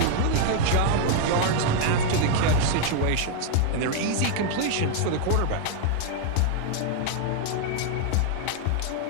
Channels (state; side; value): different; both; correlation 0.00